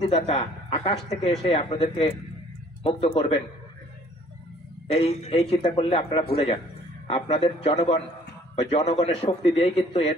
আকাশ থেকে এসে আপনাদেরকে মুক্ত করবেন, এই চিন্তা করলে আপনারা ভুলে যান। আপনাদের জনগণ বা জনগণের শক্তি দিয়েই কিন্তু এর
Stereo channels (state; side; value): normal; both; correlation 0.57